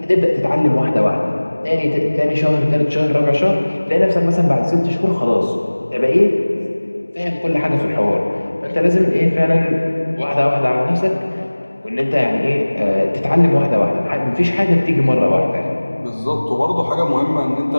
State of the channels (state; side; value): inverted; both; correlation -1.00